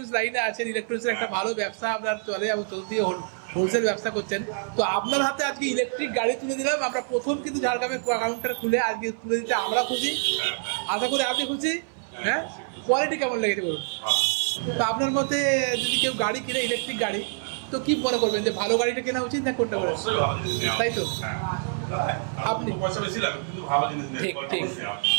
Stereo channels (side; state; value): left; silent; 59 dB below the other